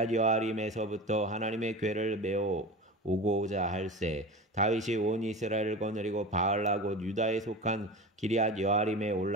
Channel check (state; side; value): normal; both; correlation 0.31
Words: 여아림에서부터 하나님의 궤를 메어 오고자 할세. 다윗이 온 이스라엘을 거느리고 바알라 곧 유다에 속한 기리앗 여아림에